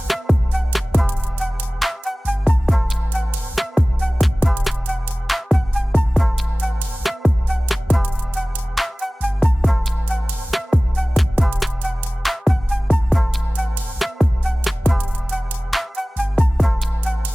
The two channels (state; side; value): normal; both; correlation 0.98